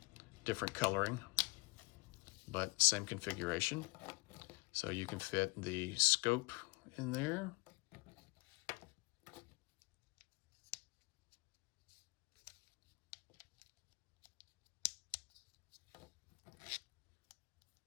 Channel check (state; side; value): quieter; right; 27.4 dB